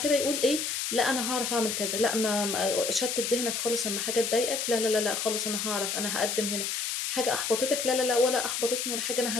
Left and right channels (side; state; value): left; noise; hiss, 1 dB below the sound